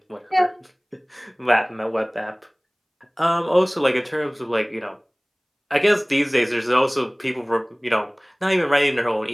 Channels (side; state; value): both; identical; correlation 1.00